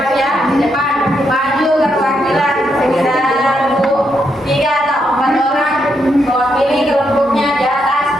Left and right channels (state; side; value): normal; both; correlation 0.79